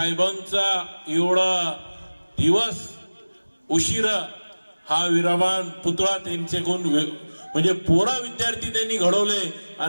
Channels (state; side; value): inverted; both; correlation -1.00